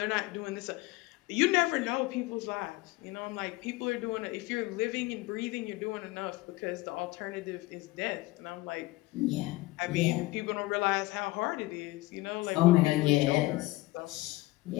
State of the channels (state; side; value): quieter; right; 20.1 dB